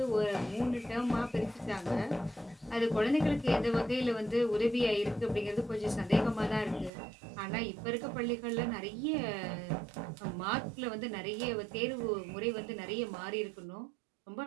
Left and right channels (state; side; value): drops out; left; at 6.9 s